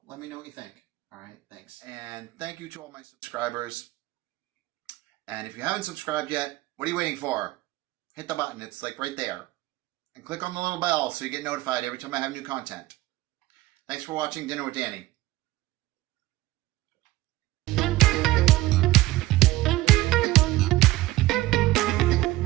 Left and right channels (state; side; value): quieter; left; 17.5 dB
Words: Let me know what you think. All right, thanks. And thank you to all my subscribers. And if you haven't subscribed yet, what are you waiting for? Hit the button. It's like right there. And click on the little bell so you get notified every time I have new content. Thanks for watching Dinner with Danny.